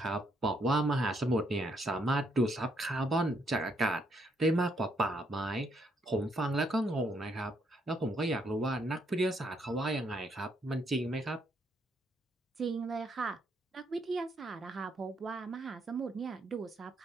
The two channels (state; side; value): normal; both; correlation 0.74